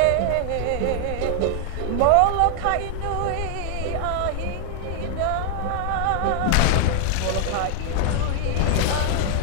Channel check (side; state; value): both; different; correlation 0.00